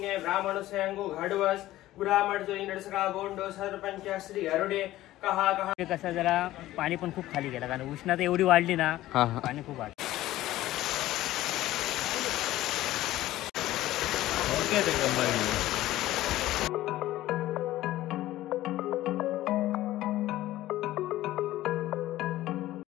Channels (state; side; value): quieter; right; 15.4 dB